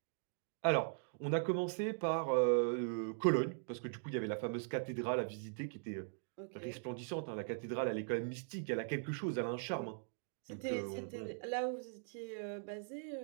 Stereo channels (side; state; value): left; silent; digital silence